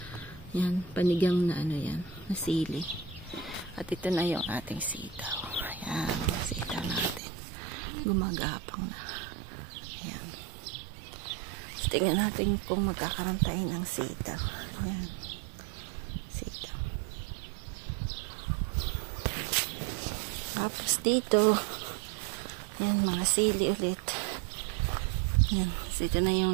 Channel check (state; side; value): drops out; left; at 7.2 s